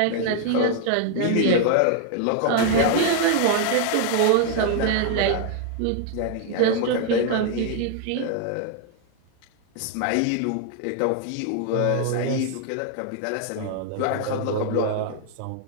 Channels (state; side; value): different; both; correlation 0.00